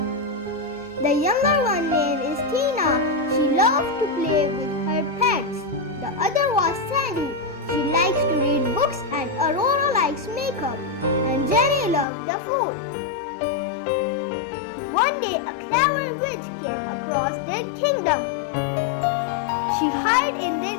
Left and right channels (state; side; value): drops out; right; at 12.1 s